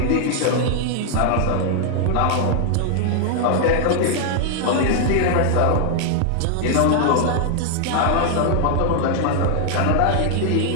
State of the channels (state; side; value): different; both; correlation 0.00